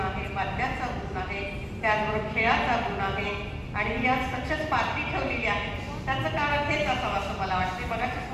आहे, वाद्याचा गुण आहे, त्याचबरोबर खेळाचा गुण आहे आणि या सक्सेस पार्टी ठेवलेली आहे. त्याचं कारण हेच असावं असं मला वाटते. मगाशीच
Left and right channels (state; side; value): identical; both; correlation 1.00